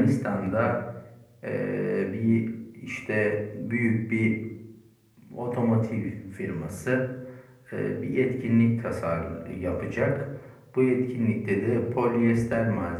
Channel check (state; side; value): identical; both; correlation 1.00